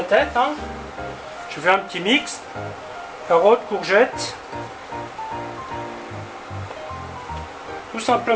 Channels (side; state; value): both; identical; correlation 1.00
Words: tête. Hein. Je fais un petit mix. Carottes, courgettes. Tout